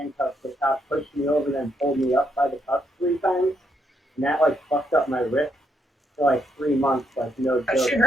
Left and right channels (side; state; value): both; normal; correlation 0.77